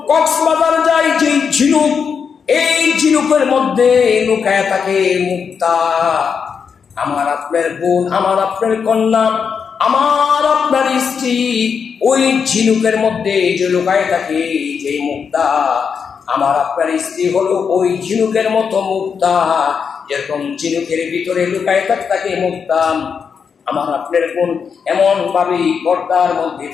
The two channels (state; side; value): quieter; right; 6.3 dB